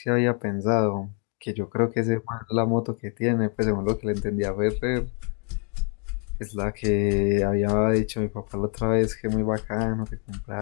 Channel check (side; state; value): right; quieter; 37.7 dB